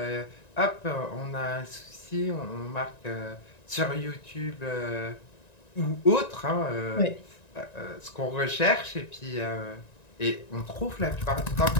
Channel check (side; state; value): right; late; 1.9 ms